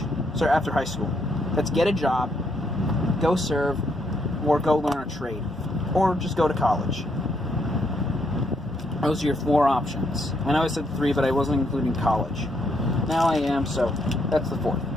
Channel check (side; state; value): both; normal; correlation 0.74